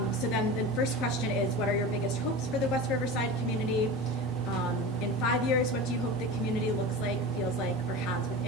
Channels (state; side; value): normal; both; correlation 0.30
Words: So then the first question is, what are your biggest hopes for the West Riverside community? In 5 years, what do you hope the community looks like, feels like, or has